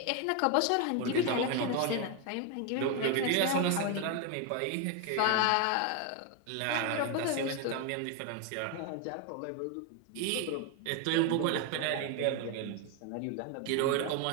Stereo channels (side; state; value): both; different; correlation 0.01